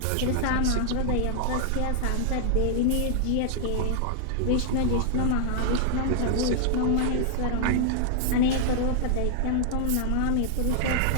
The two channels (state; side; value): different; both; correlation -0.01